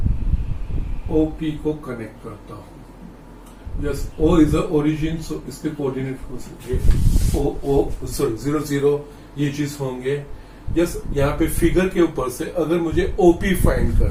ओपी को कनेक्ट करता हूं। Yes, O is the origin, so इसके कोऑर्डिनेट हो सकते 0 0, ये चीज होंगे। यस, यहाँ पे फिगर के ऊपर से अगर मुझे ओपी फाइंड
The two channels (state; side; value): identical; both; correlation 1.00